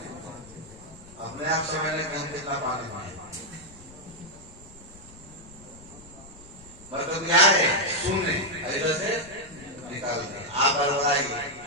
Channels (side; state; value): left; noise; rumble, 22 dB below the sound